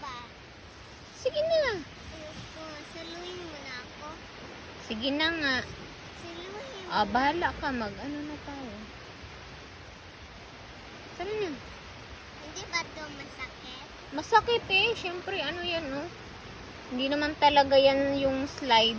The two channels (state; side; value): identical; both; correlation 1.00